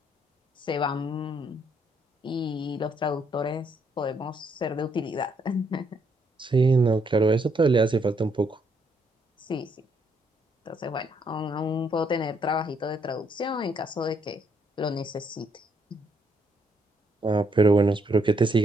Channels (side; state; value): both; normal; correlation 0.72